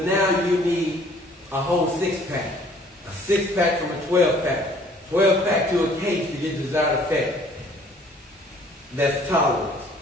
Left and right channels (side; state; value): both; normal; correlation 0.57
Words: now you need a whole 6-pack. A 6-pack from a 12-pack. 12-pack to a case to get the desired effect. That's tolerance.